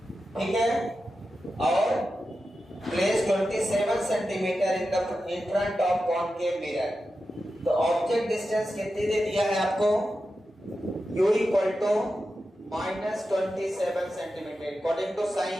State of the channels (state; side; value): normal; both; correlation 0.91